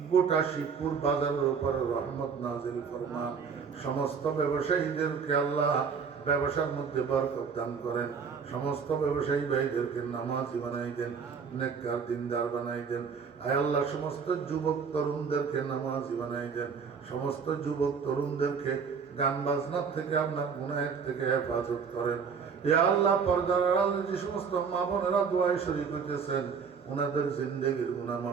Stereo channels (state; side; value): quieter; left; 6.0 dB